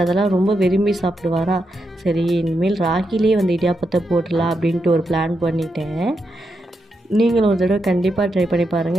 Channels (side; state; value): both; normal; correlation 0.84